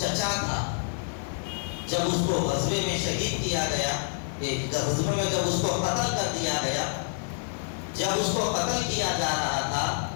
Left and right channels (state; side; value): silent; right; 60 dB below the other